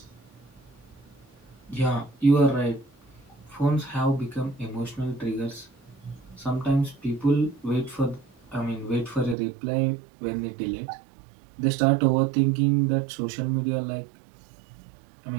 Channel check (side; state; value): left; drops out; at 9.3 s